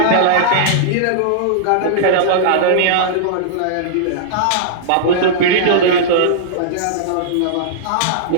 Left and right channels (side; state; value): both; different; correlation -0.02